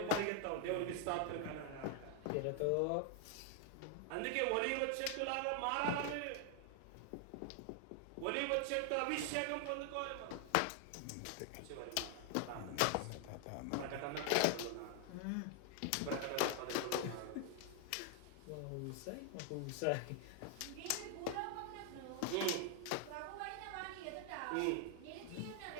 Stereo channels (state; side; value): different; both; correlation 0.00